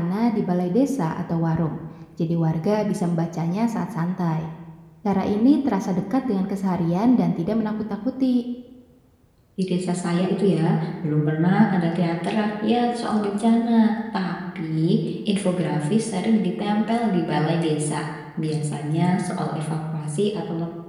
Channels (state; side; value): identical; both; correlation 1.00